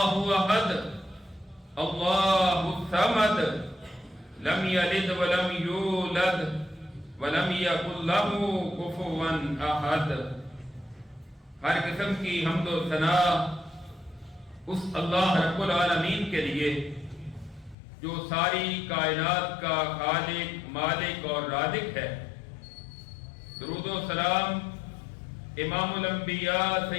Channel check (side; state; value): right; drops out; at 17.8 s